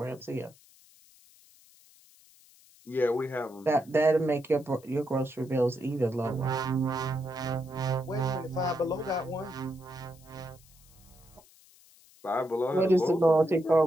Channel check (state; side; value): noise; left; hiss, 27 dB below the sound